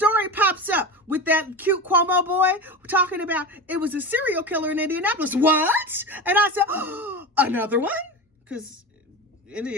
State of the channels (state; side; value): normal; both; correlation 0.25